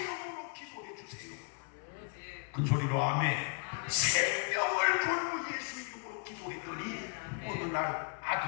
기도해 주세요. 큰 소리로 아멘. 생명을 걸고 예수 이름으로 기도했더니 어느 날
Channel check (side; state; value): right; quieter; 39.7 dB